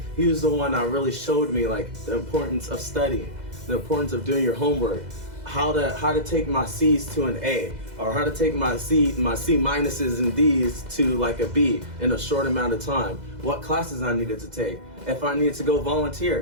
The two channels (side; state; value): left; late; 2.0 ms